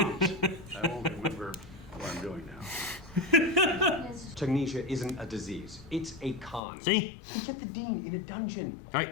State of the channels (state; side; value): drops out; right; at 6.6 s